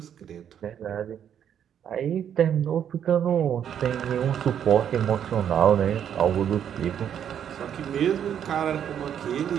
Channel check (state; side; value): quieter; left; 9.1 dB